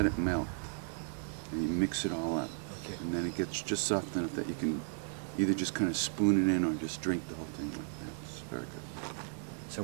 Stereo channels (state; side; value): silent; left; digital silence